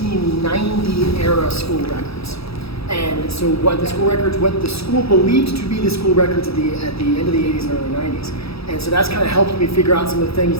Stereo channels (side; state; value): right; late; 0.77 ms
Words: era school records. And so what the school believed to be the school records at the end of the 80s and early 90s. And so that's kind of helped me figure out some of the things